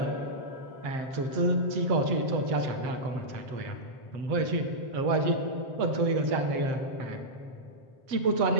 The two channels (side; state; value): left; late; 7.7 ms